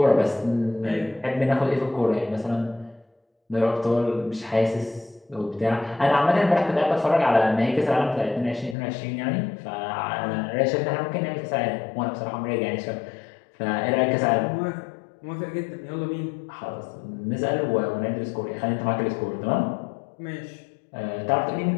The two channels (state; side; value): drops out; right; at 8.8 s